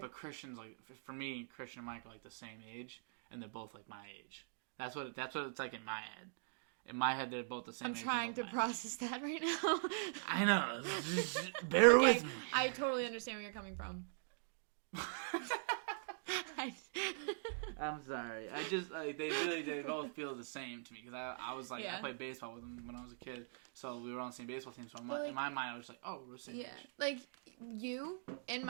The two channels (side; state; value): left; silent; digital silence